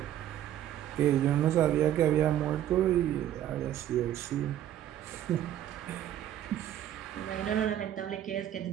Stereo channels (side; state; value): left; quieter; 11.6 dB